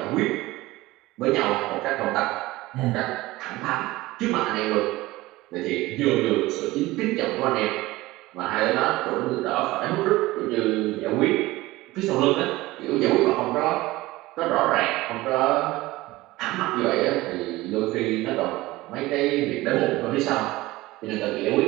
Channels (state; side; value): quieter; left; 18.9 dB